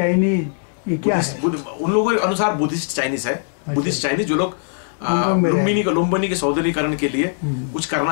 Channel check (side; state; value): right; silent; digital silence